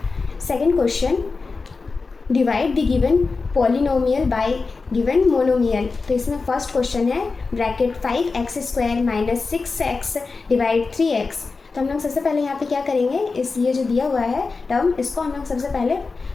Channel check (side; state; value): right; quieter; 4.2 dB